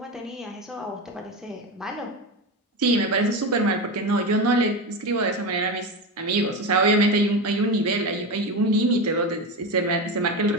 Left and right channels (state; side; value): normal; both; correlation 0.19